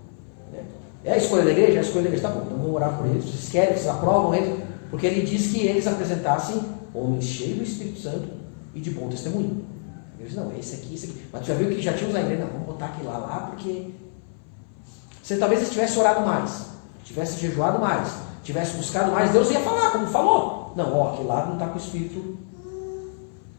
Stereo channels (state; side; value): silent; right; 58 dB below the other